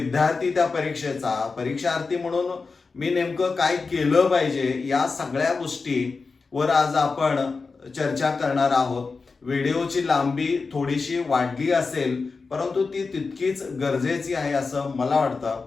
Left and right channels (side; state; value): right; quieter; 4.4 dB